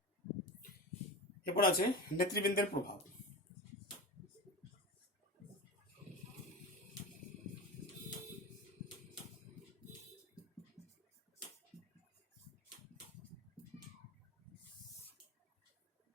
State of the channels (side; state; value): both; normal; correlation 0.27